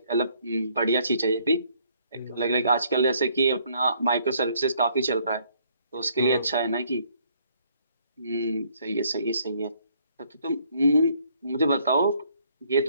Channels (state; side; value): inverted; both; correlation -0.66